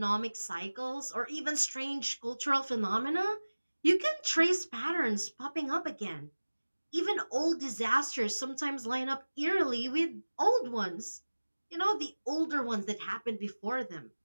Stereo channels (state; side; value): inverted; both; correlation -1.00